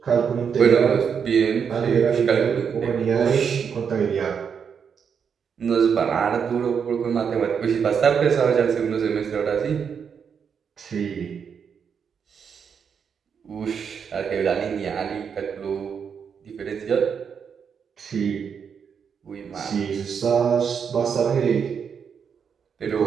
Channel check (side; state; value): left; quieter; 6.9 dB